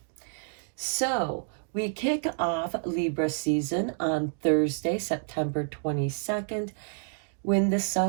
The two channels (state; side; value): silent; left; digital silence